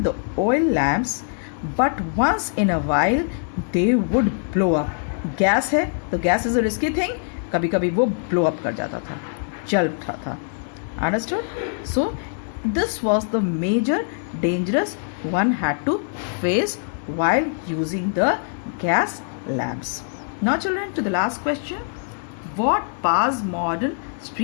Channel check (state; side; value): silent; right; digital silence